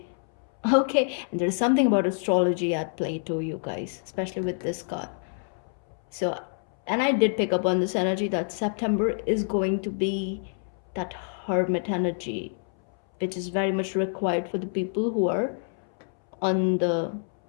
okay. And there's something about astrology at play too, you guys, especially with this card. So, and I did pick up on this energy that September is going to be that hermit energy, which is very much required for the people who are on the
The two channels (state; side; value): silent; right; 60 dB below the other